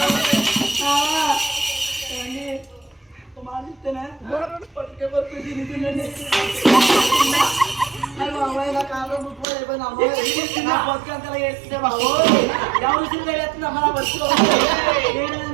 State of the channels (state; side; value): drops out; left; at 9.5 s